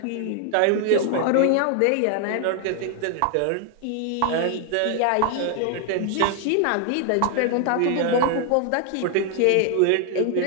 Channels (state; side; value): different; both; correlation 0.00